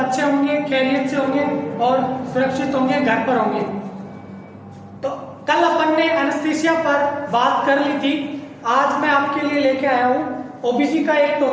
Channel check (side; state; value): both; identical; correlation 1.00